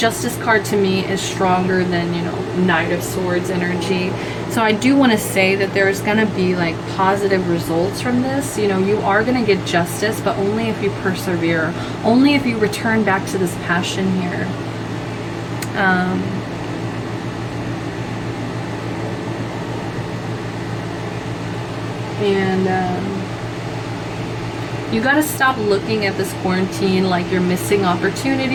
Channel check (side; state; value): both; identical; correlation 1.00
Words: card to me is stronger than, you know, Knight of Swords energy. So I do want to say that there's gonna be like positive results from this. You know, you are gonna get justice, but only if you persevere, only if you return back to this passion here. You got to stop looking at this quarantine like you're missing